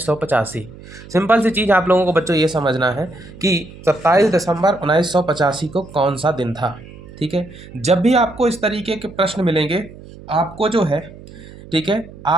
Simple सी चीज़ आप लोगों को बच्चों ये समझना है कि 27 दिसंबर 1985 को कौन सा दिन था। ठीक है, जब भी आपको इस तरीके के प्रश्न मिलेंगे, आपको जो है, ठीक है,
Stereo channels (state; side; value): noise; right; hum, 18 dB below the sound